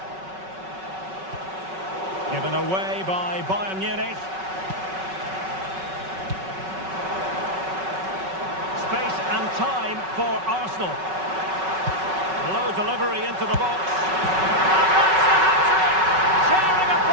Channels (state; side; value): late; left; 5.3 ms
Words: Given away by Bayern Munich. Space and time for Arsenal. Low delivery into the box. And that's the hat-trick! Tearing